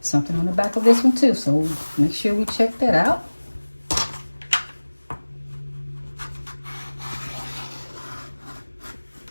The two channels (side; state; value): both; inverted; correlation -1.00